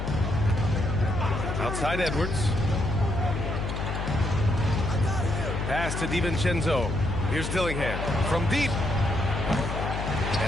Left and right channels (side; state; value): left; noise; hum, 3 dB below the sound